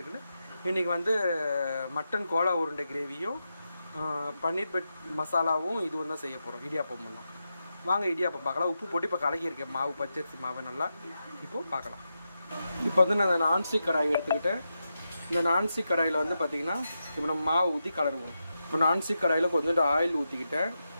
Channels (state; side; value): inverted; both; correlation -0.88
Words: இருக்குன்னு. இன்றைக்கி வந்து மட்டன் கோலா உருண்டை கிரேவியும் பன்னீர் பெட் மசாலாவும் இதுவும் தான் செய்ய போகிறோம். இடியாப்பமும் தான். வாங்க இடியாப்பம் பார்க்கலாம். உப்பு போட்டு இப்போ கலக்கியிருக்கேன் மாவு, பச்சரிசி மாவை நல்லா. இப்போது பார்க்கலாம். இப்போ வந்து நான் நான்ஸ்டிக் கடாய் எடுத்துக்கிட்டேன். இந்த நான்ஸ்டிக் கடாயில் வந்து பார்த்திங்கன்னா இப்போ நம்ம மாவு ஊற்றி கலருவோம். இப்போ நான்ஸ்டிக் கடாயில் கொஞ்சோண்டு ஆயில் ஊற்றிக்கிட்டேன்,